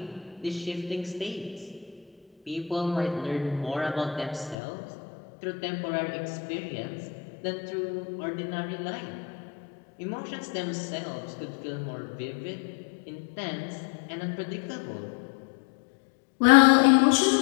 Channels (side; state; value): right; drops out; at 4.5 s